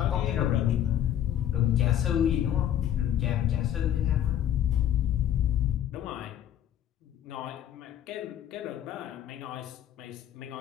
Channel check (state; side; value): quieter; right; 10.8 dB